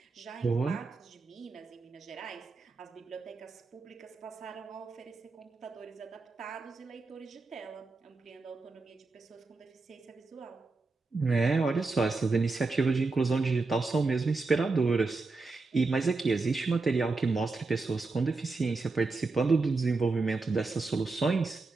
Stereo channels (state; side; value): quieter; left; 3.8 dB